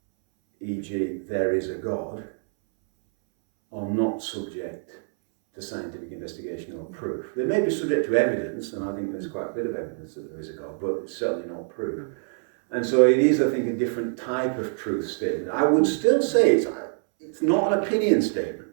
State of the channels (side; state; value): left; silent; 61 dB below the other